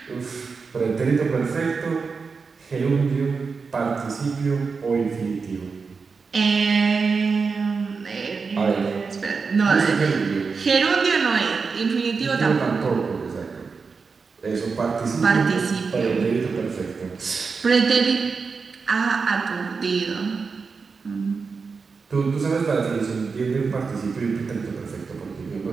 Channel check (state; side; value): quieter; left; 4.9 dB